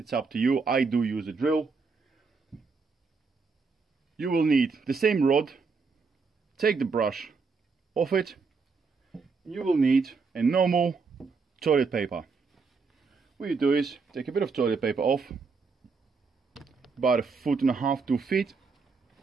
up to you. I do use a drill. You will need the same rod. Take the brush off it. You will need a normal toilet paper. what you do is take a bit of toilet paper off, about 1.5 to 2 feet,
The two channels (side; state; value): left; quieter; 4.7 dB